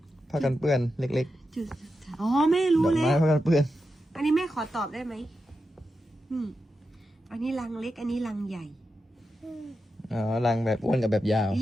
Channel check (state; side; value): normal; both; correlation 0.88